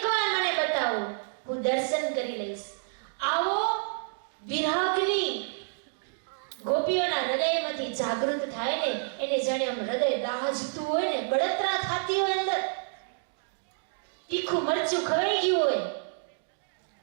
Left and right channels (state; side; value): silent; left; digital silence